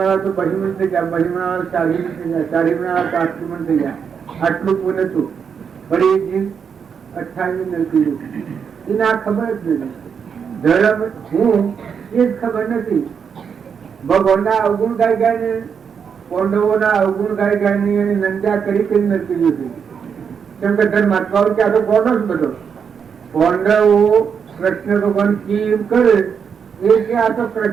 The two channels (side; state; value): left; quieter; 6.8 dB